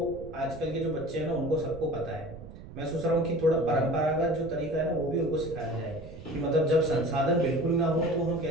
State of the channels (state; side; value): noise; right; rumble, 15 dB below the sound